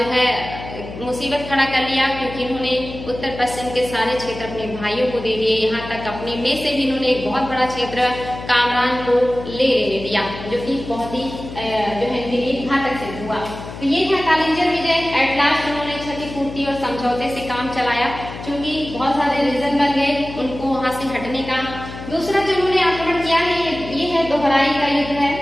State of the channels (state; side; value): noise; left; hum, 12 dB below the sound